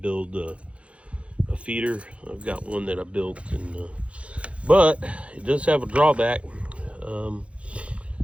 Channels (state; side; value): late; left; 0.062 ms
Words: a feeder. I've got one that I built, but it does have a drawback.